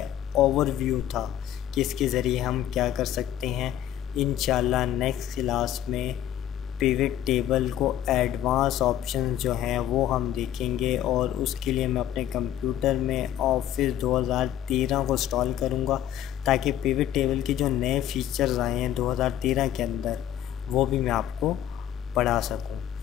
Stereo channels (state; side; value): quieter; right; 11.5 dB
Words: ओवरव्यू था कि इसके ज़रिए हम क्या कर सकते हैं। इंशाल्लाह नेक्स्ट क्लास में पिवट टेबल को एडवांस ऑप्शन जो हैं वो हम देखेंगे और उसके लिए मैं अपने कंप्यूटर में ऑफिस 2013 को इंस्टॉल करूँगा ताकि पिवट टेबल के जो नए फीचर्स आए हैं 2013 के अंदर वो भी मैं आपको पढ़ा सकूँ।